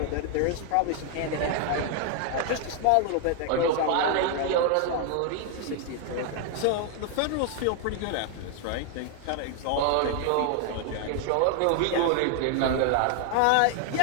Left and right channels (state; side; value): different; both; correlation 0.00